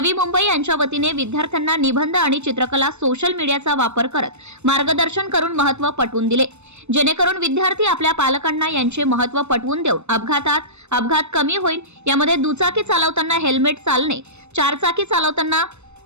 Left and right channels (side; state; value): left; late; 0.81 ms